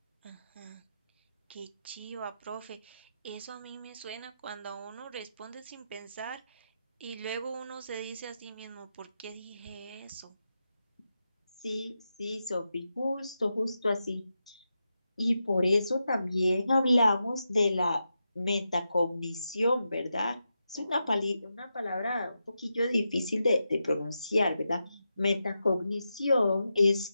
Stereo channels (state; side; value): inverted; both; correlation -0.88